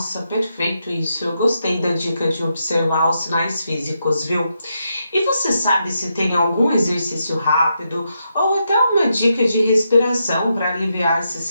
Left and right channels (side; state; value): both; inverted; correlation -0.83